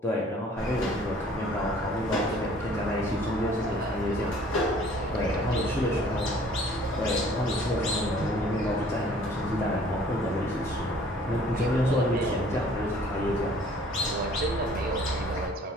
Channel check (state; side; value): normal; both; correlation 0.54